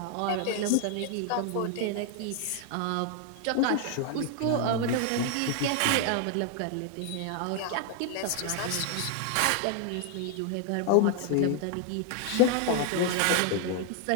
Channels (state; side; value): different; both; correlation 0.00